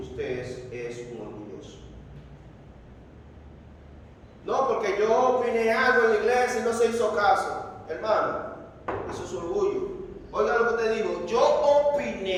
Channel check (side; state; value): both; identical; correlation 1.00